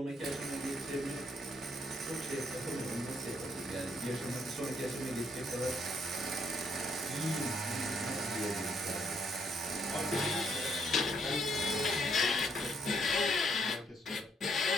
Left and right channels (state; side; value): normal; both; correlation 0.71